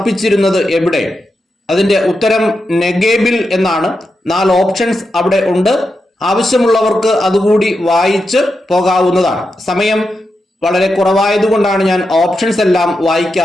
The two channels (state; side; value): normal; both; correlation 0.87